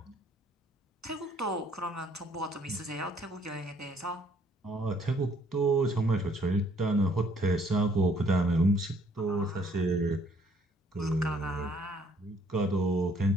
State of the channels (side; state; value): both; normal; correlation 0.63